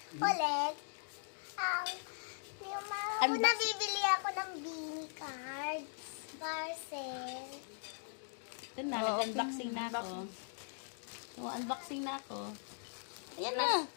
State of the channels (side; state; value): right; silent; digital silence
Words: Ulit. Yung mga Ano ba? nabibili ako ng beanie cards. Parcel. Ito na, nag-unboxing na ako. So, unboxing na ako. Ayan na.